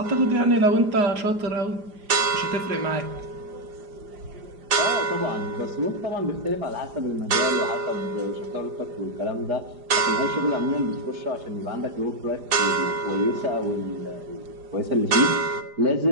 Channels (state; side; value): late; left; 4.9 ms